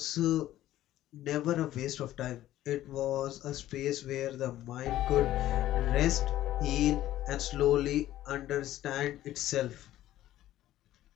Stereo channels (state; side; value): quieter; right; 13.9 dB